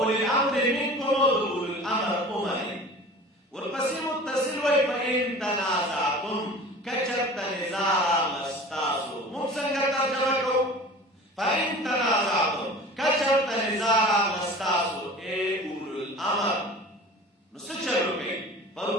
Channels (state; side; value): normal; both; correlation 0.40